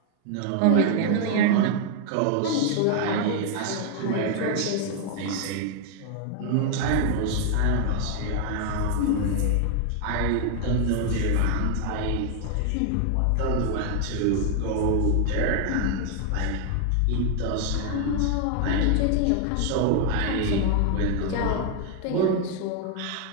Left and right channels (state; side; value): different; both; correlation 0.00